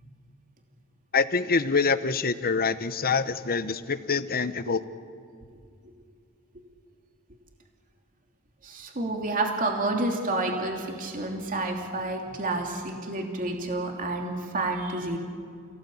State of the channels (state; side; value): normal; both; correlation 0.08